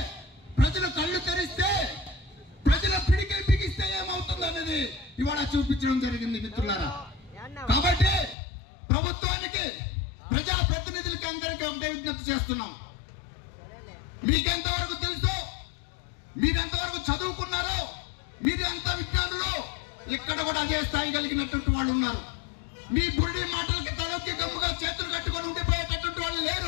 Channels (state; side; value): drops out; right; at 8.3 s